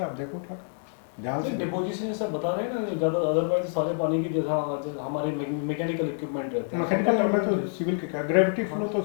आप देखो उठा ध्यान से। डिपोजिशन सब बता रहे हैं ना, ज़्यादा अदरवाइज सारे पानी की जैसा हमारे मैकेनिकल इक्विपमेंट रहते हैं। मैकेनिकल में तो सिविल के क्या, ग्रेविटी फ्लो तो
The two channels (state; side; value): silent; right; 60 dB below the other